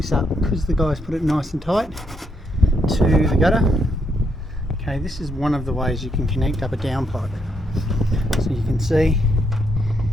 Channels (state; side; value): normal; both; correlation 0.77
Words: up, because the guys put it nice and tight to the gutter. Okay, this is one of the ways you can connect up a downpipe. So you can see